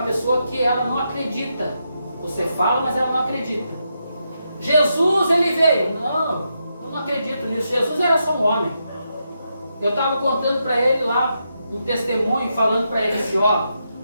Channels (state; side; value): inverted; both; correlation -0.83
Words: pessoa que ela não acredita. Você fala, mas ela não acredita. Jesus, ele veio. Não, eu não acredito nisso. Jesus era só um homem. Eu estava contando para ele lá um testemunho, falando para ele assim, ó,